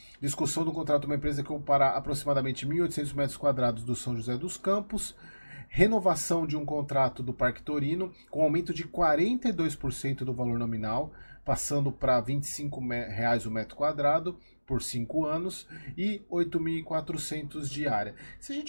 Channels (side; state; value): both; inverted; correlation -1.00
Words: Discussão do contrato de uma empresa que ocupará aproximadamente 1.800 metros quadrados do São José dos Campos. Renovação de um contrato do Parque Torino, com aumento de 42% do valor nominal, passando para R$ 25,00 o metro quadrado por 5 anos e 8.400 de área. Se a